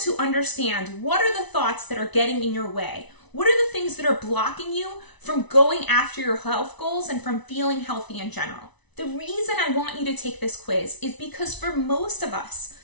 understand what are the thoughts that are getting in your way. What are the things that are blocking you from going after your health goals and from feeling healthy in general? The reason I want you to take this quiz is because for most of us,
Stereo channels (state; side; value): late; right; 1.0 ms